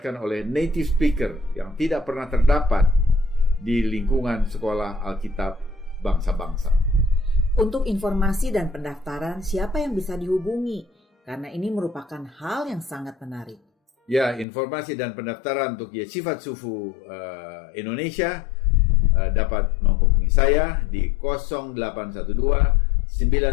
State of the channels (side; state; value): right; drops out; at 14.5 s